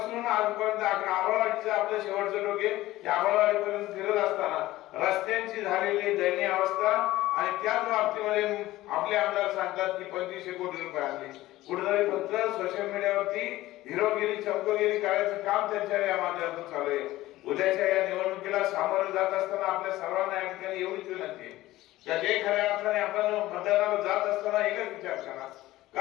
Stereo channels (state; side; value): quieter; right; 16.6 dB